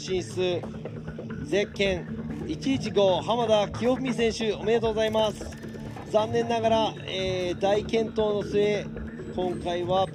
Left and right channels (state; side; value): identical; both; correlation 1.00